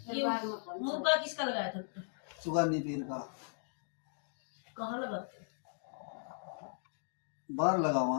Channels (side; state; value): right; silent; digital silence